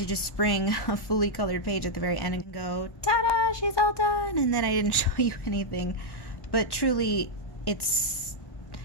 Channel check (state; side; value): late; right; 1.1 ms